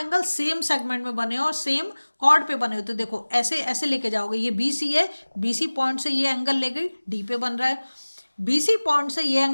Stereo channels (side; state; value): both; inverted; correlation -1.00